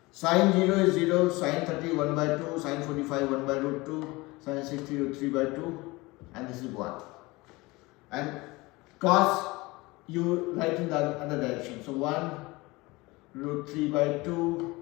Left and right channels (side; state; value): right; quieter; 22.5 dB